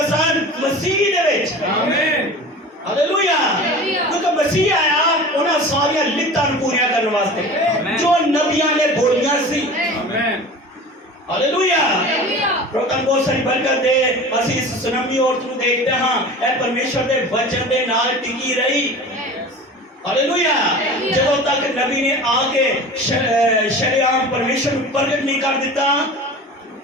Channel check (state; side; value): normal; both; correlation 0.37